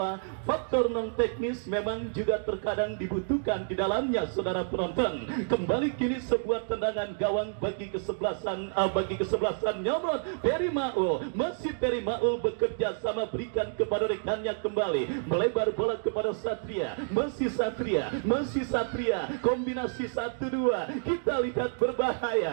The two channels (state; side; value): silent; left; digital silence